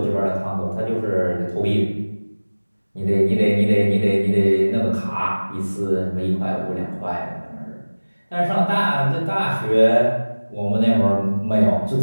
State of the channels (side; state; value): both; inverted; correlation -1.00